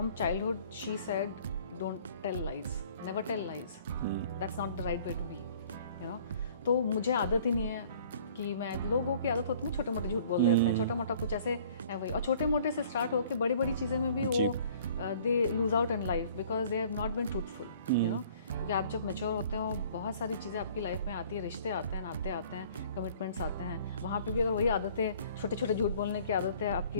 childhood she said don't tell lies, never tell lies, that's not the right way to be, you know. तो मुझे आदत ही नहीं है कि मैं, लोगों की आदत होती है छोटे मोटे झूठ बोल देते हैं, छोटा मोटा कुछ ऐसे है वही, और छोटे मोटे से स्टार्ट होकर बड़ी बड़ी चीज़ें में भी वो they lose out in life because they have not been truthful, you know. क्योंकि आप जब मैच्योर होते हो, बहुत सारी चीज़ें आपकी लाइफ में आती है, रिश्ते आते हैं, नाते आते हैं, कमिटमेंट्स आते हैं. वहाँ पे भी अगर वही आदतें, छोटे छोटे झूठ बोलने की आदतें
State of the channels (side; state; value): both; inverted; correlation -0.53